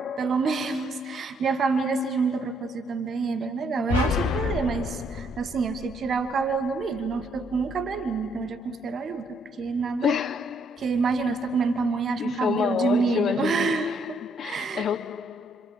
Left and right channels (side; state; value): both; normal; correlation 0.70